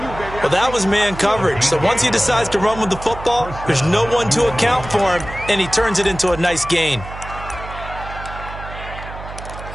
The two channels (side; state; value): right; noise; hum, 12 dB below the sound